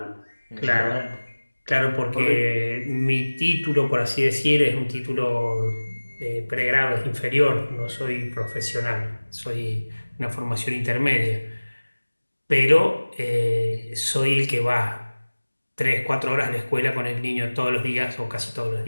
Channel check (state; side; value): inverted; both; correlation -1.00